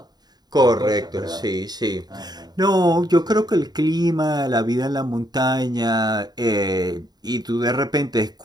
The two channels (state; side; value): late; left; 0.20 ms